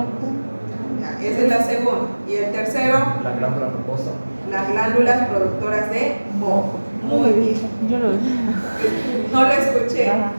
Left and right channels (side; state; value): both; inverted; correlation -1.00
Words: Ya, esa es la segunda. Y el tercero, La glándula mucosa. las glándulas productoras de moco. Muy bien. Yo lo vi. No lo escuché.